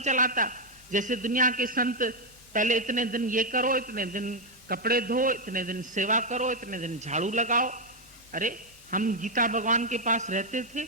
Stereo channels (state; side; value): normal; both; correlation 0.02